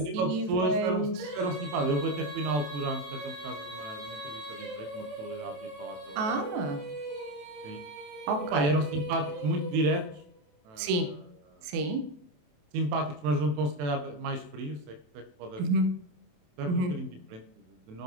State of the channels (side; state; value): left; late; 28 ms